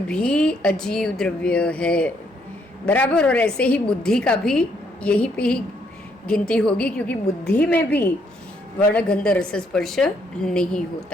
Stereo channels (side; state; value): both; normal; correlation 0.71